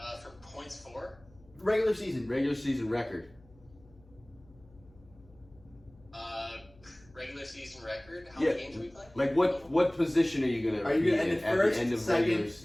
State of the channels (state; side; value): noise; left; hum, 26 dB below the sound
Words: For points for? Regular season. Regular season record. Regular season record? How Yeah. many games are we playing? Like what position are you gonna? Are you going to end in at the first, end of regular second,